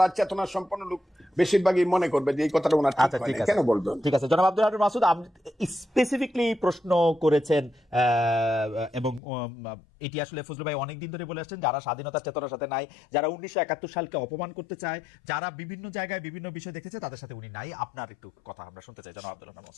চেতনা সম্পন্ন লোক বেশিরভাগই মনে করবে যে এই কথাটা ওনার ঠিক আছে, কেন বলবেন? ঠিক আছে, জনাব আব্দুল হান্নান মাসুদ স্পেসিফিকলি প্রশ্ন করেছেন, এবং এটি আসলে ফজলু ভাই অনেকদিন ধরে বলে আসছেন, যারা স্বাধীনতার চেতনার সাথে নাই, যারা 1971 সালকে অপমান করতে চায়, যারা বিভিন্ন জায়গায় বিভিন্ন বিষয় দেখেছে, তাদের সাথে উনি নাই। আপনার একটু কথা আমরা শুনতে চাই জনাব আব্দুল হান্নান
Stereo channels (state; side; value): drops out; right; at 9.2 s